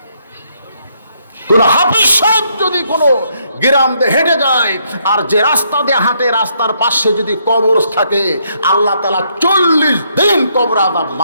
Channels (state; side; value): inverted; both; correlation -0.73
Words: কোন হাফেজ সাহেব যদি কোনো গ্রাম দিয়ে হেঁটে যায়, আর যে রাস্তা দিয়ে হাঁটে রাস্তার পাশে যদি কবর থাকে, আল্লাহ তাআলা 40 দিন কবর আযাব